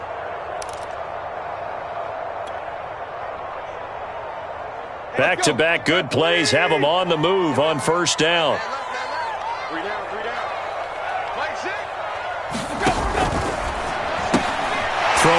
Back-to-back good plays have them on the move on first down.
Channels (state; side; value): identical; both; correlation 1.00